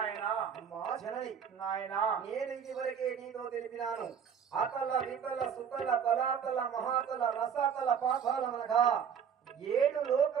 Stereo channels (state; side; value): quieter; left; 7.6 dB